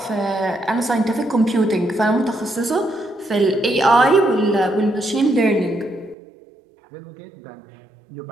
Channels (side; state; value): left; drops out; at 6.2 s